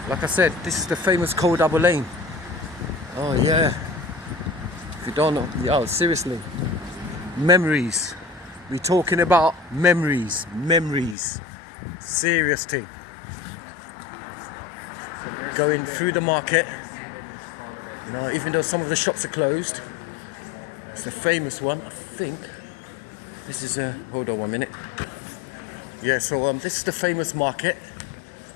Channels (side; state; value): right; drops out; at 11.2 s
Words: Like I said, this is the famous Cold Harbour Lane. Oh yeah. If you don't know, yo, seriously. Memories. We're talking about memories. Memories. Serious thing. Going through the market. You know, even though some of the shops are closed. It's the famous one, I think. This is hold on 1 minute. Yeah, so this is the famous market.